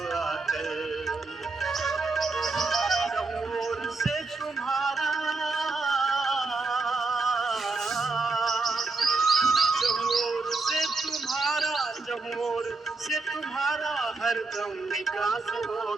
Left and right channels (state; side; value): quieter; left; 3.8 dB